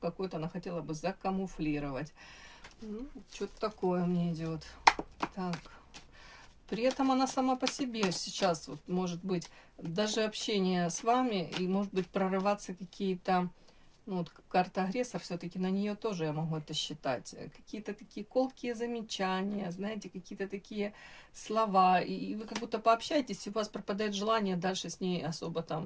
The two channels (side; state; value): both; identical; correlation 1.00